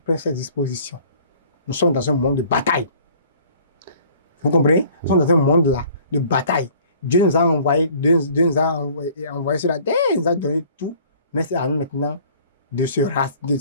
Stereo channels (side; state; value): both; inverted; correlation -0.52